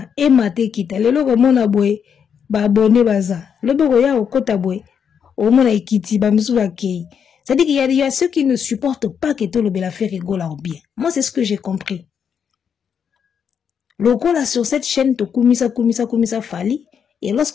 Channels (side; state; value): right; quieter; 7.4 dB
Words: emate kita lelo ko mona boye ba abonné baza loboko ya okota boye o mona ikiti ba musu ba kei. C'est-à-dire qu'il y a ceux qui ne supportent pas que tout le bel affaire rigole en bien. Moi c'est ce que j'ai compris. Logo là sur cette chaîne to kumisa fali et